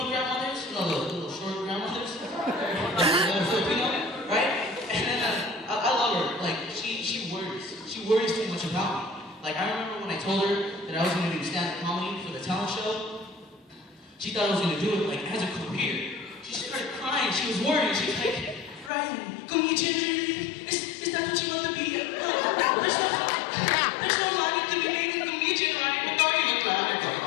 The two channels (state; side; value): drops out; right; at 18.9 s